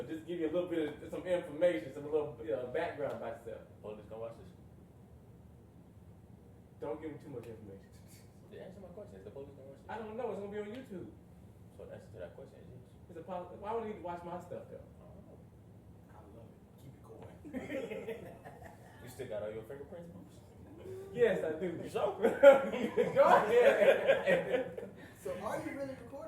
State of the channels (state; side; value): identical; both; correlation 1.00